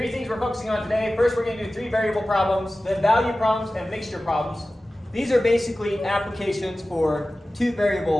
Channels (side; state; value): both; normal; correlation 0.96